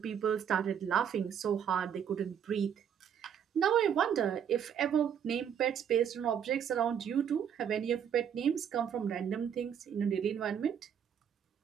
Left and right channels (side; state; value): left; quieter; 8.3 dB